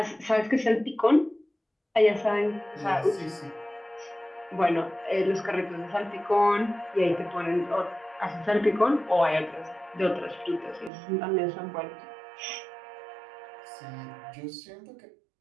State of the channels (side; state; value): left; drops out; at 10.9 s